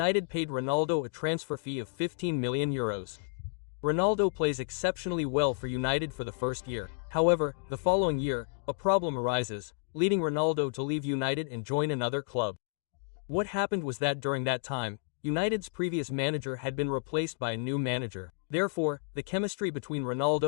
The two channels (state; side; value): silent; right; digital silence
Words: paid Ronaldo a transfer fee of 15 million euros. Ronaldo plays exceptionally well for United for the first year. However, the following year, a problem arises, leading Ronaldo to leave United and join another club. What happened was that during that time, United's previous manager had been replaced by a new manager. Therefore, the chemistry between